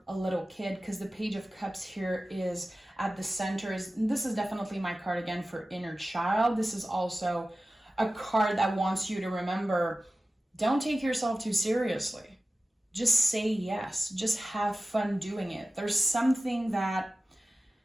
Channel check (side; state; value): both; normal; correlation 0.95